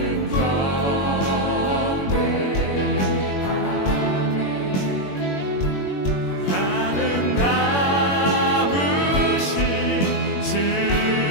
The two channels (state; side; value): late; right; 21 ms